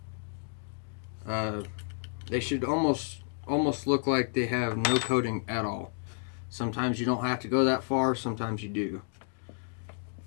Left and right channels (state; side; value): silent; right; digital silence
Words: they should almost look like they have no coating at all. Sometimes you don't have to go that far, sometimes you do.